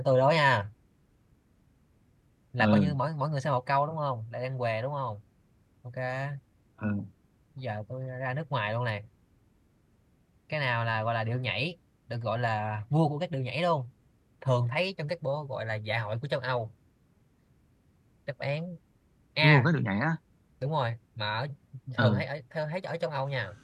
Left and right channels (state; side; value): identical; both; correlation 1.00